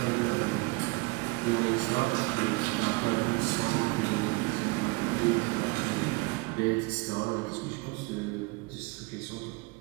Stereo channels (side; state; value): left; quieter; 26.2 dB